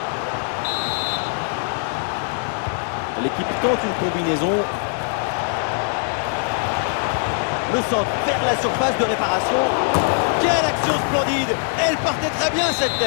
L'équipe tente une combinaison. Le centre vers la surface de réparation. Quelle action splendide. Elle partait très bien cette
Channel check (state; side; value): silent; right; 56 dB below the other